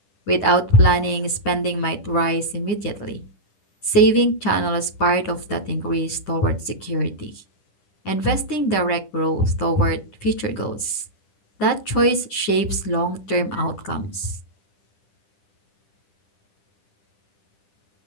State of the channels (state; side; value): late; right; 10 ms